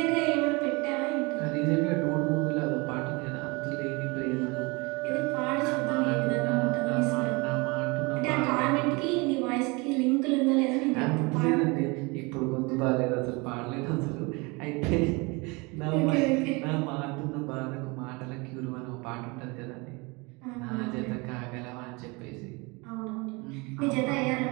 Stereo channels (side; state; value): left; quieter; 27.1 dB